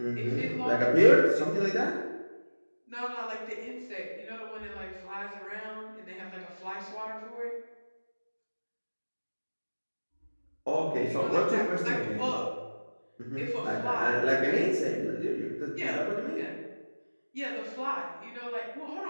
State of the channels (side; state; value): both; inverted; correlation -1.00